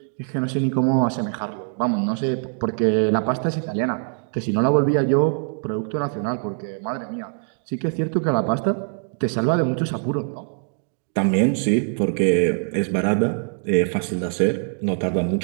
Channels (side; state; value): left; silent; 55 dB below the other